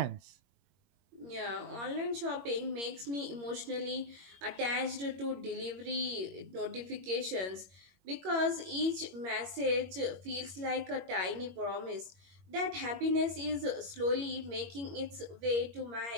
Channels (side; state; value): left; late; 21 ms